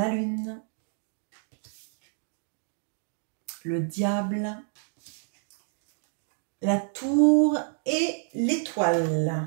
lune, le diable, la tour et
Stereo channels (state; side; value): silent; left; 59 dB below the other